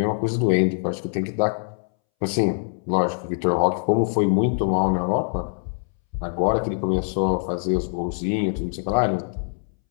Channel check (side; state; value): right; silent; 63 dB below the other